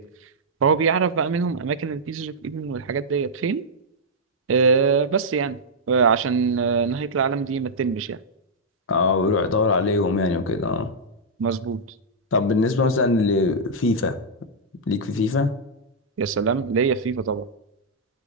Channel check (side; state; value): both; normal; correlation -0.08